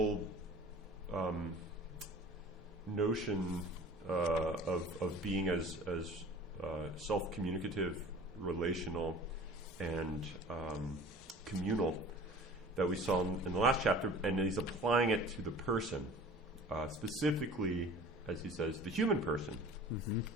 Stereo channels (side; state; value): both; normal; correlation 0.44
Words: notion of being as self-communicative, relational, and communal that we saw in the last chapter, and he's applying it to the person, specifically, as he says, the human person. Mm-hmm.